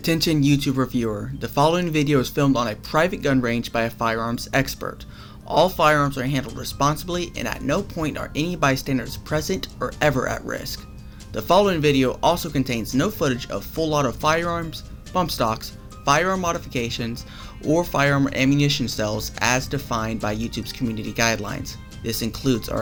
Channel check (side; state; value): both; identical; correlation 1.00